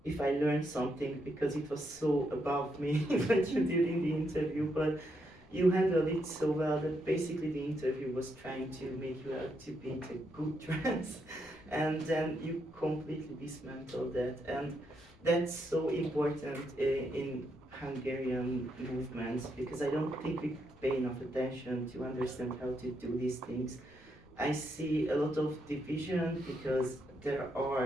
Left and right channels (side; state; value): left; noise; rumble, 25 dB below the sound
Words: if I learned something, because it was so above me what you did in the interview, but you handled it so well that basically the interview was trying to make you out to be a good trans, and then you completely dismantled that, and that's so important in Hungarian movements, because I don't think we pay enough attention to understand how to do these things. I see a lot of division because